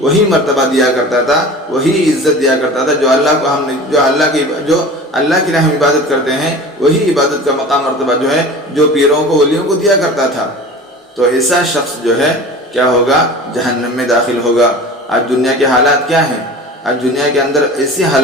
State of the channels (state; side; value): normal; both; correlation 0.38